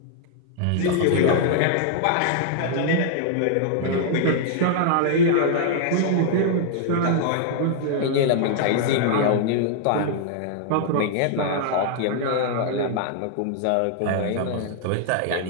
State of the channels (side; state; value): both; different; correlation -0.01